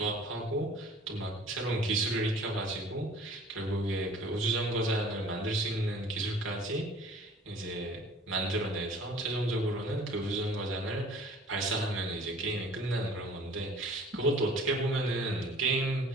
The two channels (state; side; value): normal; both; correlation 0.48